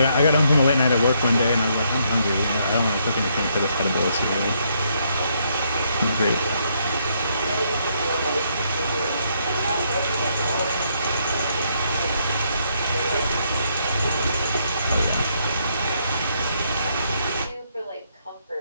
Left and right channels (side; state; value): both; inverted; correlation -0.73